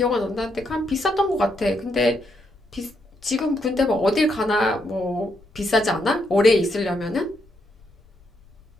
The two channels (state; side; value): noise; left; rumble, 28 dB below the sound